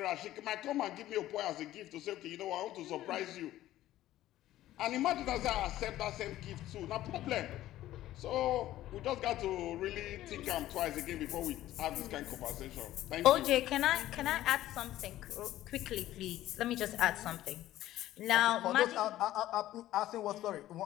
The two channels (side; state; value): right; quieter; 14.3 dB